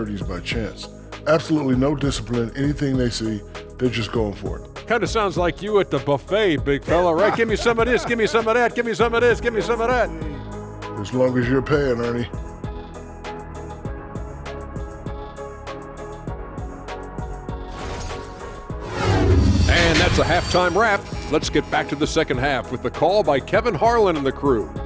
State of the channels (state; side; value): identical; both; correlation 1.00